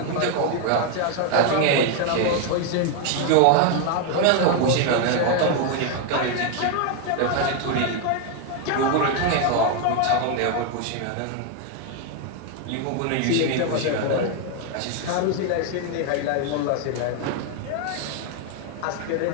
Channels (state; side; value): different; both; correlation 0.00